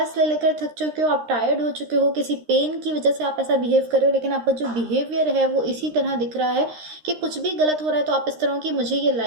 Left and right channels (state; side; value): late; left; 13 ms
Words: ले लेकर थक चुके हो, आप टायर्ड हो चुके हो, किसी पेन की वजह से आप ऐसा बिहेव कर रहे हो, लेकिन आपका जो बिहेवियर है वो इसी तरह दिख रहा है कि कुछ भी गलत हो रहा है तो आप इस तरह की मुझे ये